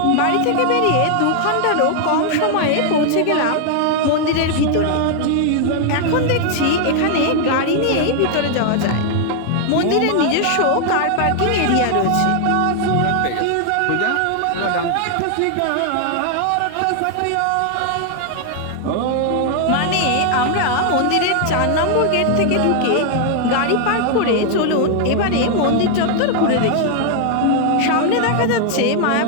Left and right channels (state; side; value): different; both; correlation 0.00